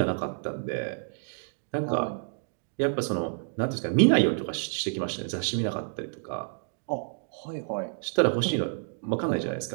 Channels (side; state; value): left; silent; digital silence